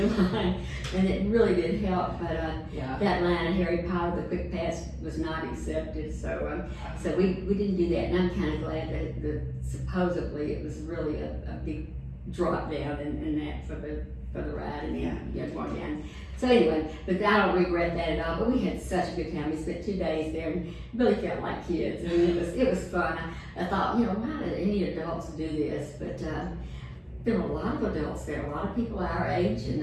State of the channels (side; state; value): both; identical; correlation 1.00